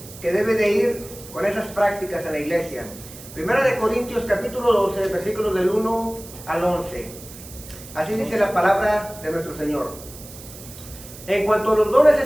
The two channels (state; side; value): noise; right; hiss, 16 dB below the sound